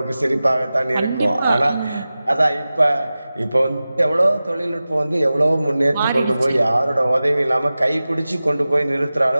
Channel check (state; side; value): inverted; both; correlation -0.96